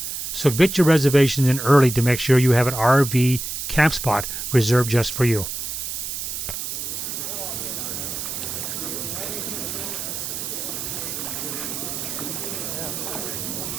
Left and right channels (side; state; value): right; noise; hiss, 5 dB below the sound